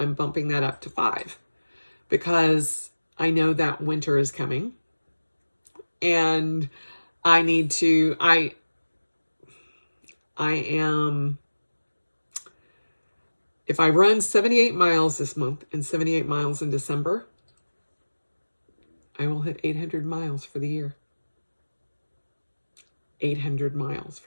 bumping that up to 5 because I know that winter is coming and I need to, I am, if I run 78 miles this month and 78 miles in December, I will hit 800 miles for the year. 800 miles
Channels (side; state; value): both; inverted; correlation -1.00